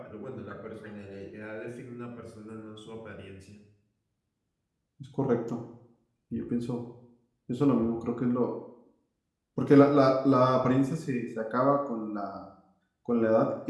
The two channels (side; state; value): both; identical; correlation 1.00